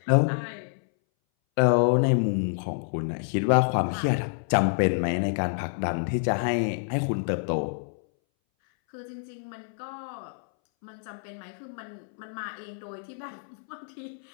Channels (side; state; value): right; silent; 60 dB below the other